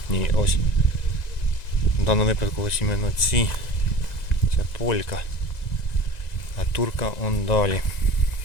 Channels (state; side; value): late; right; 1.9 ms